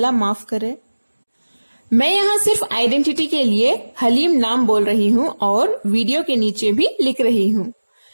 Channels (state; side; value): inverted; both; correlation -1.00